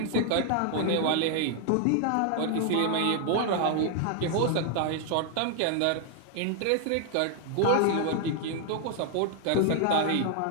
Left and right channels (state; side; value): different; both; correlation 0.00